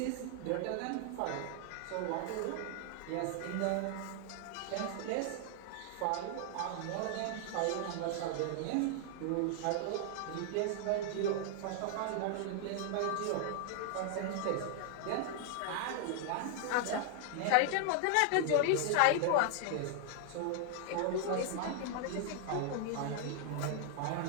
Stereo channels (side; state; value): both; different; correlation 0.00